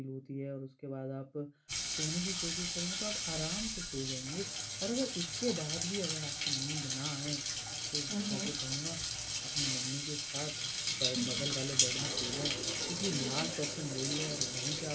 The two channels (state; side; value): identical; both; correlation 1.00